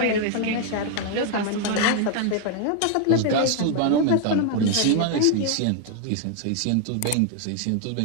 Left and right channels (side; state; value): both; different; correlation 0.00